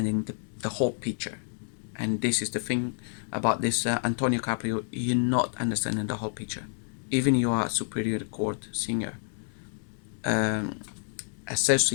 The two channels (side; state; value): right; silent; digital silence